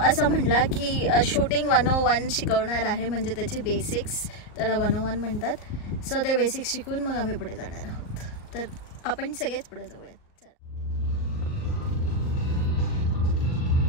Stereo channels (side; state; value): right; late; 38 ms